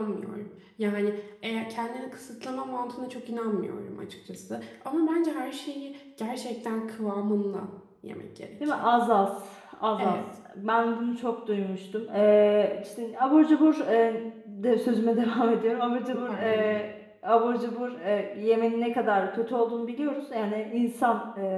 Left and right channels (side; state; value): both; identical; correlation 1.00